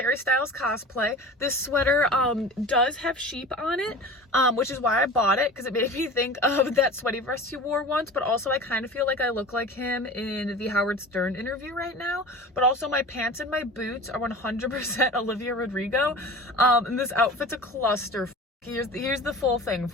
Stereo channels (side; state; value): both; normal; correlation 0.37